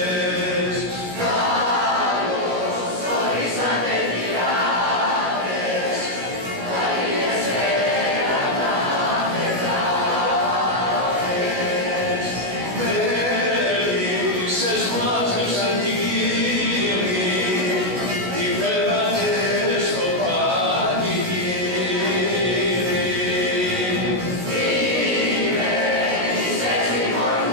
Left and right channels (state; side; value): late; left; 16 ms